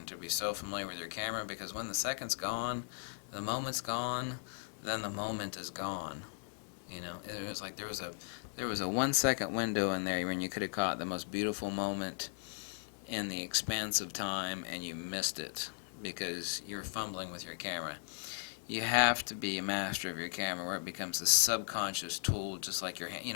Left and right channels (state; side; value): silent; right; digital silence